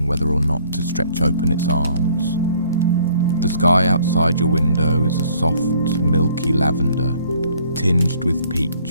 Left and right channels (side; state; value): both; inverted; correlation -0.60